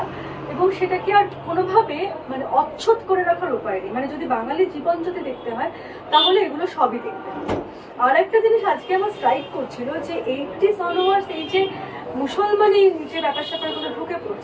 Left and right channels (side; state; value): both; identical; correlation 1.00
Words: এবং সেটাকে আর কোনোভাবে মানে অচ্ছুত করে রাখার উপায় নেই। মানে যদি বাঙালি জীবন যদি দেখতে হয় তাহলে এগুলো সবই দেখতে হবে। আর একটা জিনিস আজকে আমার স্ট্রাইক করছিল যে 80s অনওয়ার্ডস এই যে মুসলমানি যে ব্যাপার স্যাপারগুলো ঢুকে